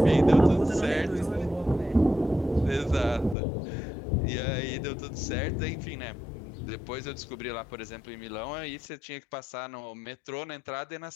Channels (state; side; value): drops out; right; at 3.4 s